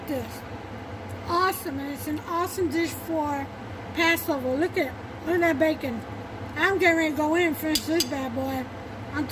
this. Awesome, and it's an awesome dish for Passover. Look at that bacon. I'm getting ready to go in and finish this bad boy.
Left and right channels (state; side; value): identical; both; correlation 1.00